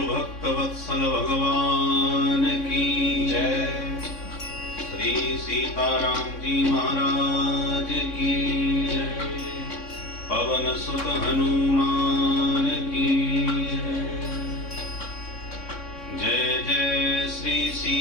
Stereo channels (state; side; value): late; right; 3.6 ms